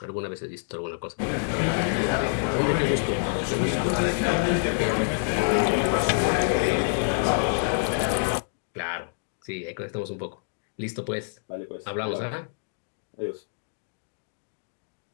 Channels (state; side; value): silent; right; digital silence